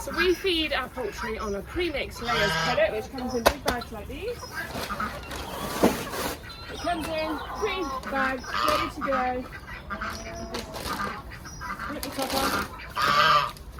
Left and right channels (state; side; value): identical; both; correlation 1.00